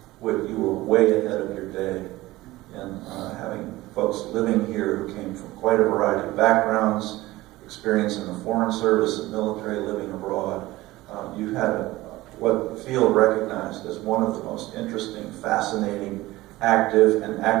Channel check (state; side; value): quieter; left; 18.4 dB